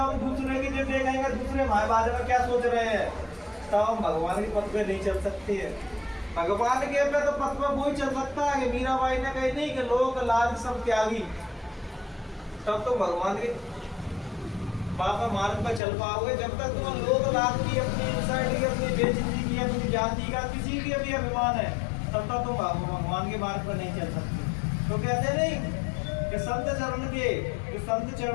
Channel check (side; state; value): right; drops out; at 15.8 s